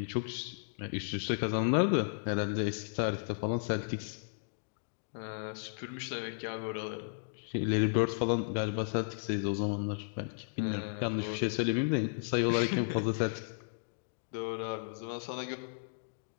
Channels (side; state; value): right; silent; digital silence